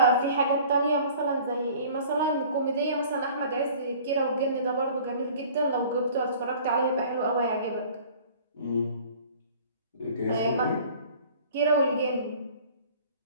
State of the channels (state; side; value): inverted; both; correlation -0.48